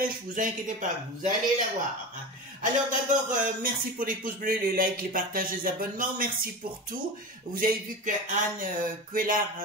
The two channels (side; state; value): both; normal; correlation 0.27